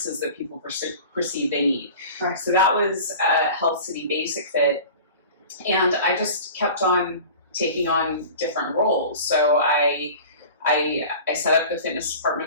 that people perceive they need. Right. So that was Health City Basic Fit, and I just kept on taking on different roles. So I set up the fitness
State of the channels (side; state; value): both; inverted; correlation -0.39